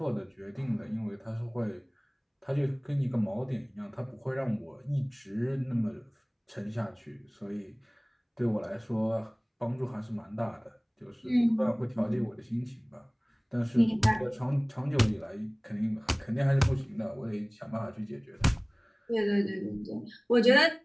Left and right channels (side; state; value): both; identical; correlation 1.00